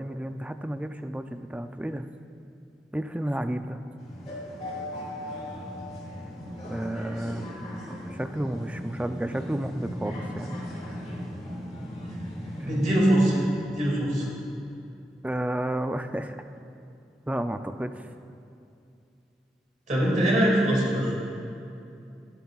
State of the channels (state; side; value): normal; both; correlation 0.86